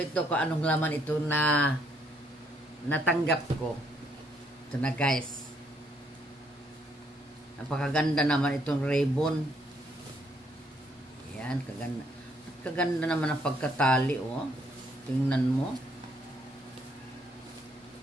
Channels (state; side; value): normal; both; correlation 0.70